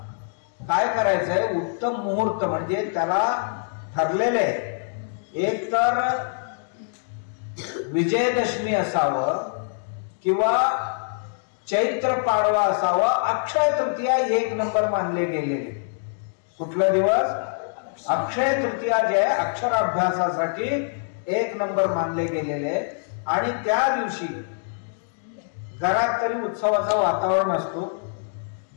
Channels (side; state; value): right; silent; digital silence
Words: काय करायचंय, उत्तम मुहूर्त म्हणजे त्याला ठरलेले, एक तर विजयदशमी असावं किंवा चैत्र पाडवा असावा, अक्षय तृतीया 1 नंबर मानले गेलेले. कुठला दिवस? अक्षय तृतीया जे अक्षराभ्यासासाठी 1 नंबर मानले गेलेले. आणि त्या दिवशी घरात तरी उत्सवाचं वातावरण असतो.